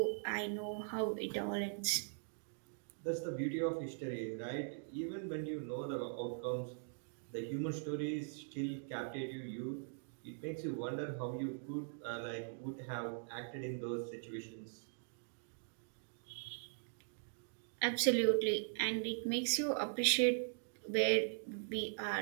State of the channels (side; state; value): left; silent; digital silence